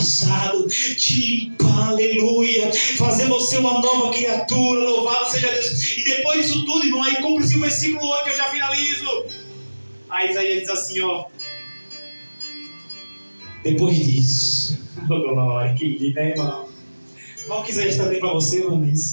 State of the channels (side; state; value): both; inverted; correlation -1.00